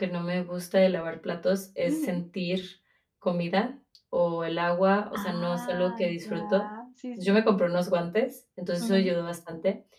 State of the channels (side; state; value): both; identical; correlation 1.00